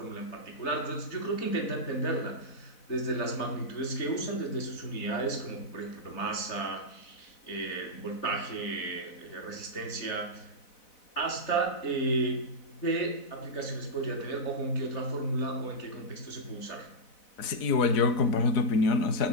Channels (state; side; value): late; right; 4.0 ms